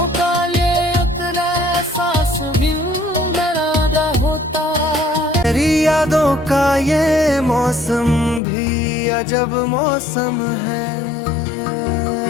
का ये उतना एहसास भी डरादा होता। तेरी यादों का ये मौसम भी अजब मौसम है,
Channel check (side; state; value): right; drops out; at 8.4 s